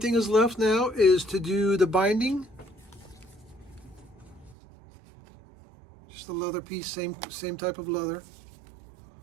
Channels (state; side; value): drops out; left; at 4.5 s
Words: is left now is to do the binding. Just a leather piece, same type of leather.